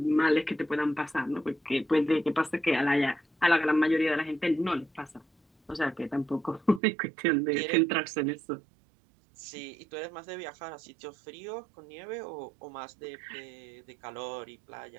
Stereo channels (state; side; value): drops out; left; at 6.8 s